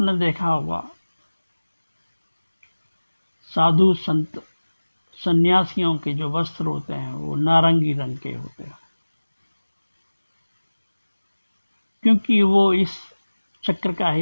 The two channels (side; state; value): both; inverted; correlation -1.00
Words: देखा होगा साधु संत सन्यासियों के जो वस्त्र होते हैं वो नारंगी रंग के होते हैं, क्योंकि वो इस चक्र का